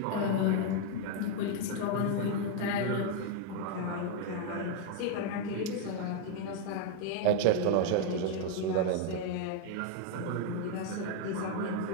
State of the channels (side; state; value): both; different; correlation 0.00